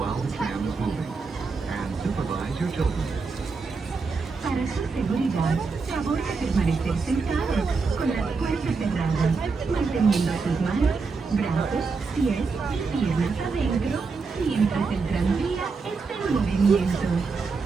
the tram is moving. And supervise your children. Para su seguridad, favor de permanecer sentado, con las puertas cerradas, manteniendo sus manos, brazos, pies y piernas adentro, mientras el tranvía está en movimiento.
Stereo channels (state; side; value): quieter; left; 4.6 dB